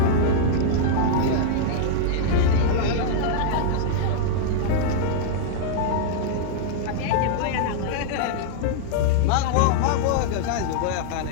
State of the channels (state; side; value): different; both; correlation -0.01